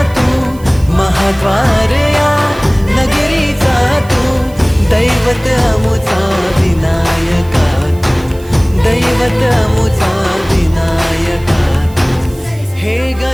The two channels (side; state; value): right; noise; hiss, 23 dB below the sound